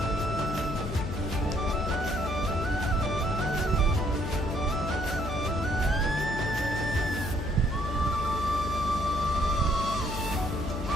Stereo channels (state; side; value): noise; left; hum, 5 dB below the sound